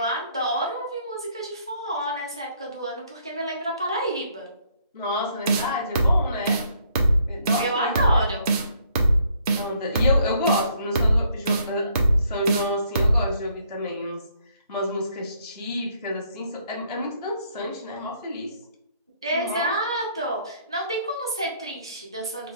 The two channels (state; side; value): inverted; both; correlation -0.67